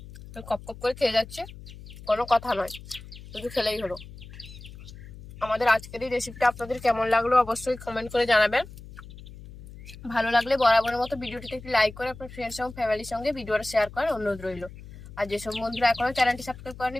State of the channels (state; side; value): noise; left; hum, 16 dB below the sound